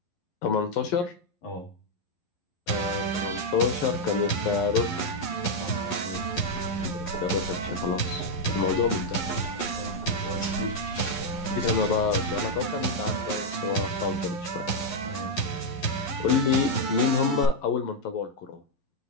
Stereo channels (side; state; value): right; late; 11 ms